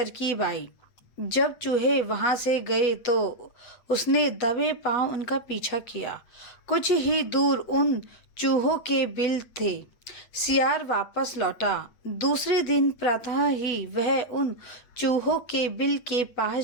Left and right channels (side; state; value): right; late; 8.4 ms